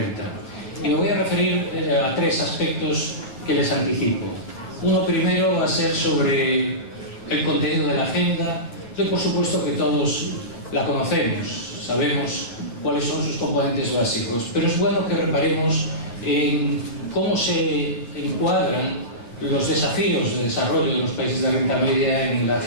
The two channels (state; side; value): late; right; 9.1 ms